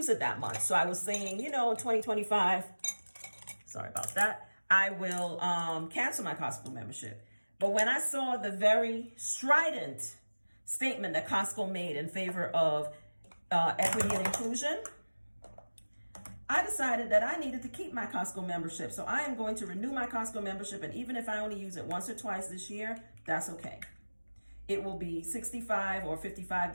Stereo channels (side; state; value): both; inverted; correlation -1.00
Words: it that much. So I was saying, you know, in 2025, sorry about that, I will cancel my Costco membership. But when I saw the very strident statement that Costco made in favor of equity and inclusion, I decided that I needed to keep my Costco membership. So I am going to renew my Costco membership. And even if I only use it once or twice this year, that's okay. It will be $65 or